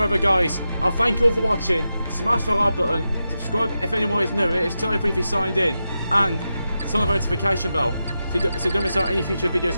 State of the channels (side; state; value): both; inverted; correlation -0.90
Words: guys, I'll thank you all for watching. Smash the like button, subscribe if anyone is new. It is totally free if you signed in, and turn on the notification bell so you don't miss out any future